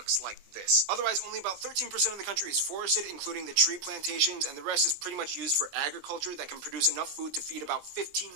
like this. Otherwise, only about 13% of the country is forested, including the tree plantations, and the rest is pretty much used for agriculture that can produce enough food to feed about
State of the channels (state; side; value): late; left; 20 ms